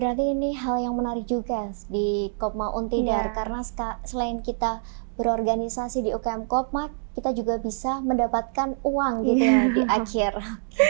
ini hal yang menarik juga di Kopma Untidar, karena selain kita berorganisasi di UKM Kopma, kita juga bisa mendapatkan uang gitu ya di akhir.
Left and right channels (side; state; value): left; silent; digital silence